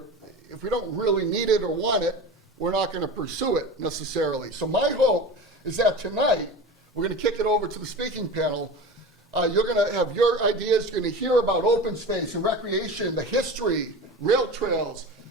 if we don't really need it or want it, we're not going to pursue it necessarily. So my hope is that tonight, we're going to kick it over to the speaking panel. You're going to have your ideas, you're going to hear about open space and recreation, the history, rail trails,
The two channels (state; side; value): normal; both; correlation 0.31